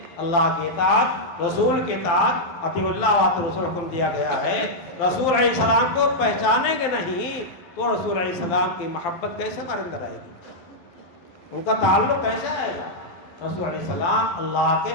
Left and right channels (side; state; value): right; late; 12 ms